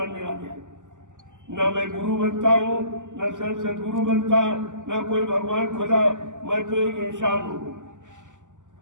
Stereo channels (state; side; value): late; left; 0.87 ms